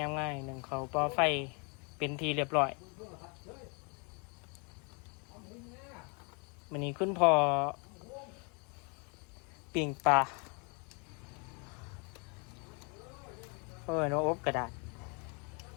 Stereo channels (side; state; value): right; quieter; 33.8 dB